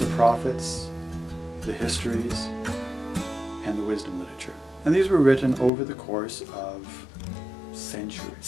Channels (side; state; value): right; drops out; at 5.7 s